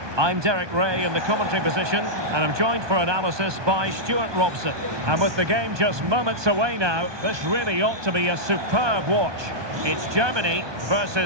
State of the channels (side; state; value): left; late; 1.2 ms